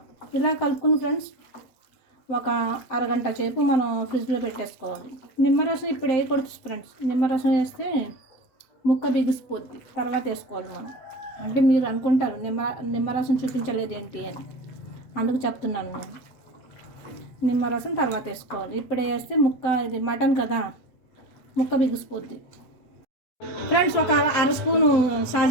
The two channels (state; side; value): late; right; 8.0 ms